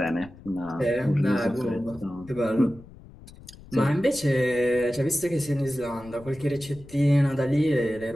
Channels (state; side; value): noise; left; rumble, 20 dB below the sound